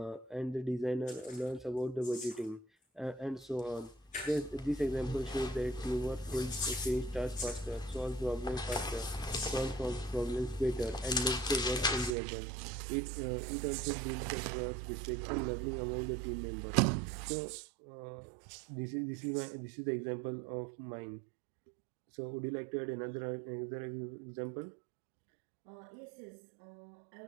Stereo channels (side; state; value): left; drops out; at 12.2 s